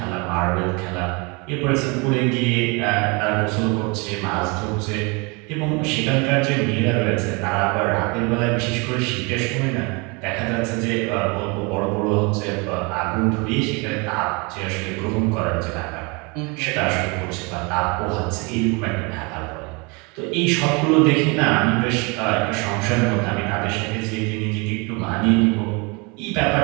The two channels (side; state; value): left; quieter; 29.2 dB